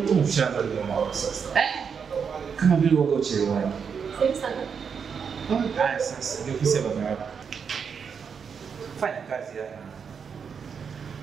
Mshamba ndio mwa sasa. Kama vile wako uchelewani. Sasa. Haya sasa, ndio ofisi ya baba yako. Fanya kazi hapa.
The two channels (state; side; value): quieter; left; 6.5 dB